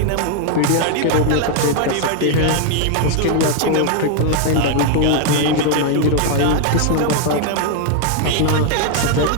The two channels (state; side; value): different; both; correlation 0.00